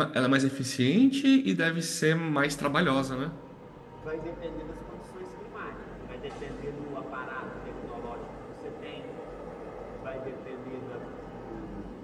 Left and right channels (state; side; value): identical; both; correlation 1.00